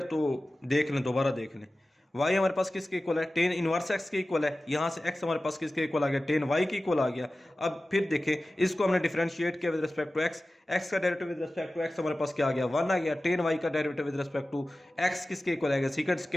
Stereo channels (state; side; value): normal; both; correlation 0.96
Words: तो देख लें, दोबारा देख लें। y हमारे पास किसके इक्वल है, टेन इनवर्स x के इक्वल है। यहां से x हमारे पास किसके इक्वल आ गया, टेन y के इक्वल आ गया। अब फिर देखें, इसको हमने डिफरेंशिएट किया with respect to x, x का derivative with respect to x हमारे पास क्या आ गया, 1 आ गया। टेन y का derivative with respect to x किसके इक्वल आएगा, सीकेंट